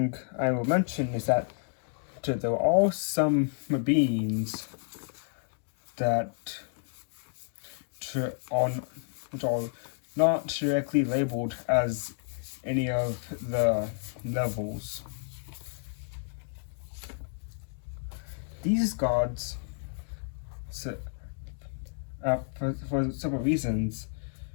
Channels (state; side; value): silent; right; 57 dB below the other